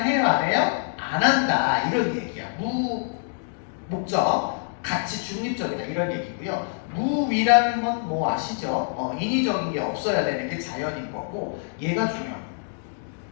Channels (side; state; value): right; silent; digital silence